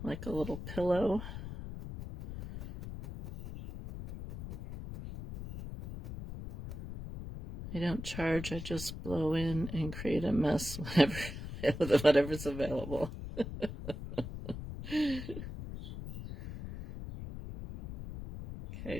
like a little pillow. I don't charge, I just blow in and create a mess whatever's available.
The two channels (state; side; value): noise; left; rumble, 9 dB below the sound